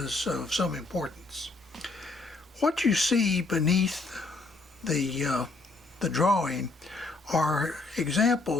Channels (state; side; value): quieter; right; 3.4 dB